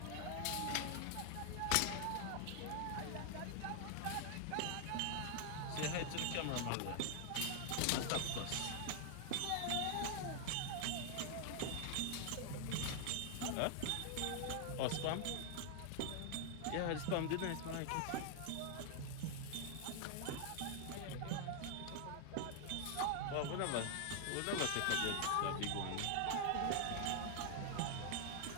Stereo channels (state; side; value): different; both; correlation 0.00